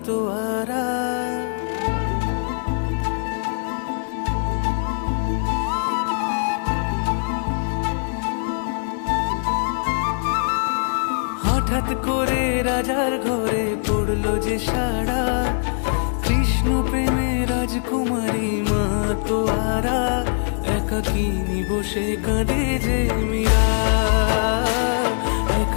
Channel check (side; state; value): right; silent; 64 dB below the other